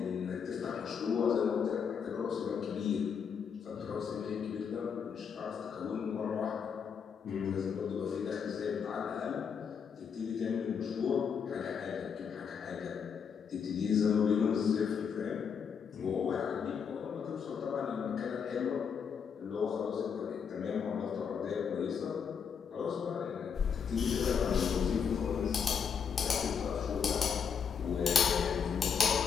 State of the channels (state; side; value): quieter; right; 6.8 dB